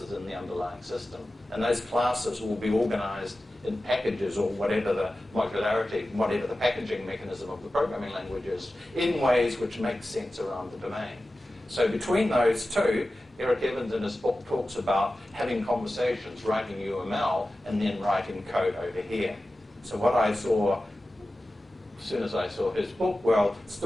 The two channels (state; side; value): normal; both; correlation 0.95